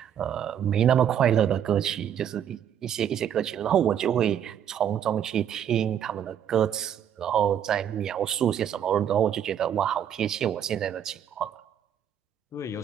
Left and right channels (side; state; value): left; quieter; 9.3 dB